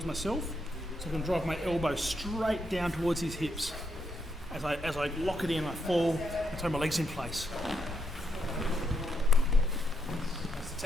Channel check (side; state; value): both; normal; correlation 0.79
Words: myself, so I can drive my elbow straight down towards his hips. As I lock it in, I fall and throw my legs in place. That's the